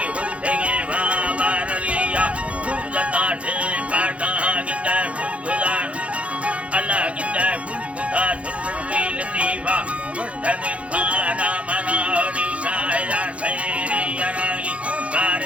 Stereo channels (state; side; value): late; left; 0.063 ms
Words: उठेगे बाबरलिया गुलता ठे पाटा गिंदा गुलान अल्लाह गिंदा गुदा सुरवी लतीफा वस्तन खाना मनानी शाया सैरी यराई